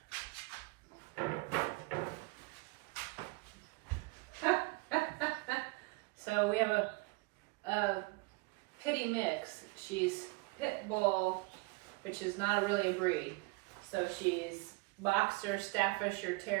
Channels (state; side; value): quieter; left; 26.4 dB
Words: So we have a pitty mix. She's pit bull, which is not really a breed. So she's boxer, Staffordshire